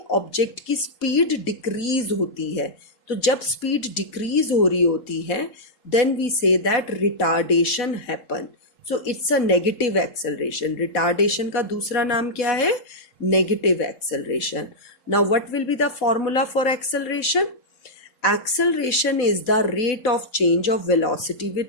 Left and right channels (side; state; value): right; late; 4.0 ms